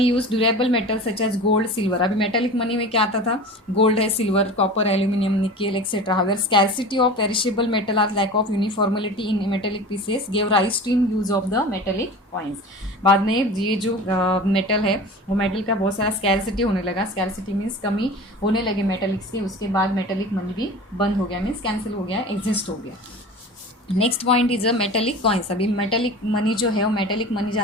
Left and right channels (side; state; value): both; normal; correlation 0.35